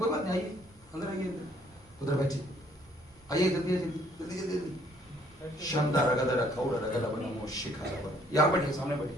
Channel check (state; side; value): normal; both; correlation 0.62